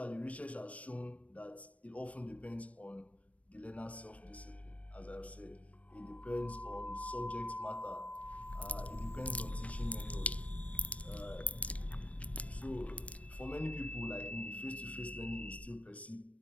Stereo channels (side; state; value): right; late; 0.065 ms